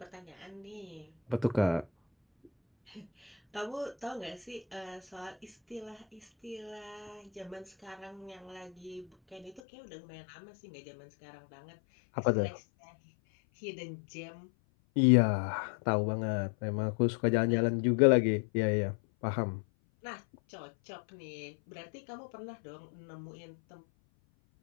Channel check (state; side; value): drops out; right; at 9.6 s